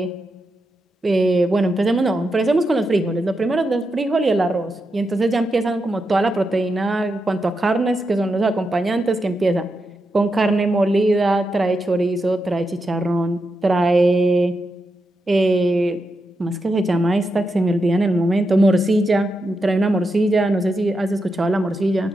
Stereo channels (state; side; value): normal; both; correlation 0.86